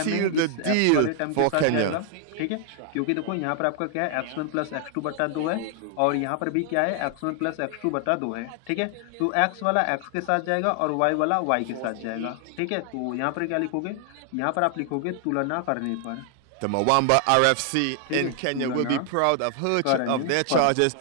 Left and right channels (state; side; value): different; both; correlation 0.00